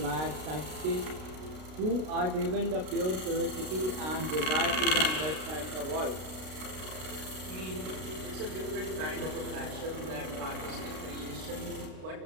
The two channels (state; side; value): late; left; 32 ms